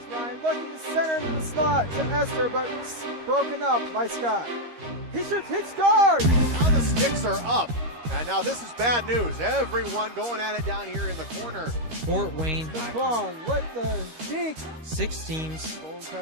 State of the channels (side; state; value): left; late; 13 ms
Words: Ryan looking to center into the slot to Esther, but broken up by Scott. He shoots, hits, scores! Now the sticks are up. And now this is bad news. Everyone going at it down here in the corner. Fort Wayne The Hockey. Plum with the deke. 6 teams. Bone